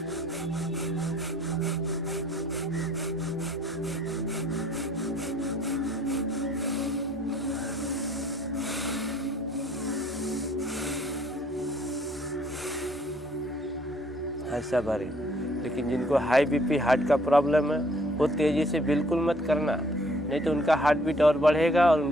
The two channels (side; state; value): both; normal; correlation 0.60